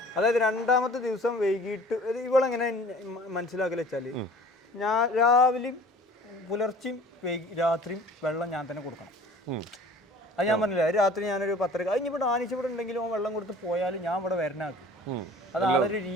അതായത് 2ാമത്തെ ദിവസം വൈകിട്ട് ഇവളെങ്ങനെ മനസ്സിലാക്കല് വെച്ചാല്, ഞാൻ രാവിലെയും പുലർച്ചെയും രാത്രിയും വെള്ളം ഞാൻ തന്നെ കൊടുക്കണം. അത് ഞാൻ പറഞ്ഞില്ല, രാത്രി ഞാനൊരു 10:30 കഴിഞ്ഞിവിടെ ആനിച്ചിവിടെ ഉണ്ടെങ്കിലും വെള്ളം കൊടുത്ത് പോയാലും ഞാൻ ഇവിടെ വരണാക്കും. അത് ആളൊരു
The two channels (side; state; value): both; normal; correlation 0.48